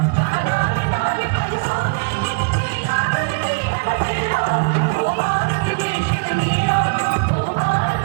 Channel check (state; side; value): quieter; left; 32.1 dB